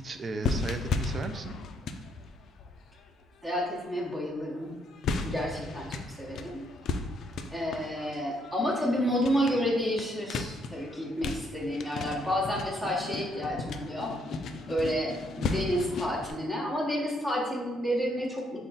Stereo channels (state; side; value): normal; both; correlation 0.72